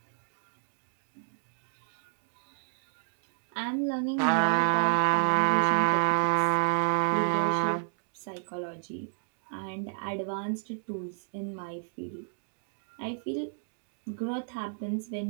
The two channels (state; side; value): silent; left; digital silence